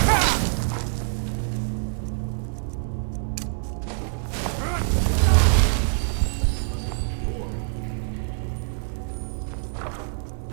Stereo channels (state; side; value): silent; left; 56 dB below the other